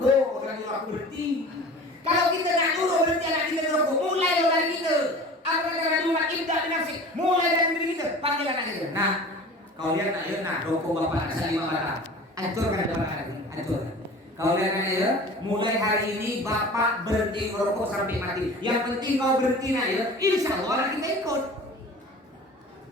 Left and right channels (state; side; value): normal; both; correlation 0.40